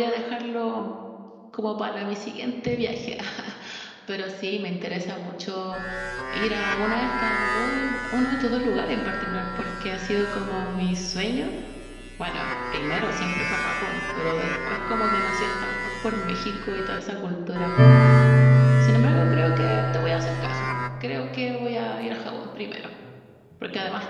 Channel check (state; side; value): identical; both; correlation 1.00